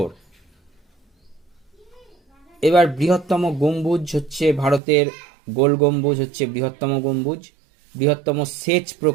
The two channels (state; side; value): drops out; left; at 4.8 s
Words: এবার বৃহত্তম গম্বুজ হচ্ছে ভারতের গোল গম্বুজ হচ্ছে বৃহত্তম গম্বুজ। বৃহত্তম সেচ